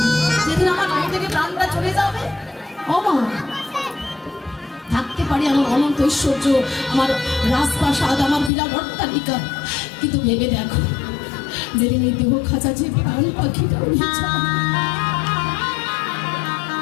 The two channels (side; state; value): right; drops out; at 8.5 s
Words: না। যেদিন আমার গায়ে থেকে প্রাণটা চলে যাবে, মা থাকতে পারি আমার অনন্ত ঐশ্বর্য, আমার রাজপ্রাসাদ, আমার বিরাট অট্টালিকা, কিন্তু ভেবে দেখো, যেদিন এই দেহ খাঁচা যে প্রাণ পাখিটা